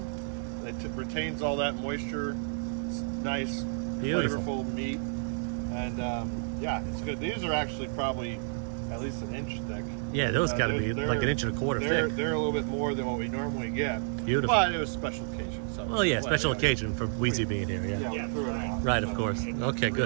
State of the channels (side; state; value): left; silent; digital silence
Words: It retains all that moisture. It's nice, Beautiful. flavorful meat, and yeah, it's good. These are actually probably at least an inch thick. Yeah, those got to be they're- like an inch and a quarter They're thick. a little bit more than what we normally get. Beautiful. But it was special occasion. So Well, yeah, special yeah. occasion for Wheezy being here. Yeah. Yeah, we threw it out. Right, of course. It's Okay,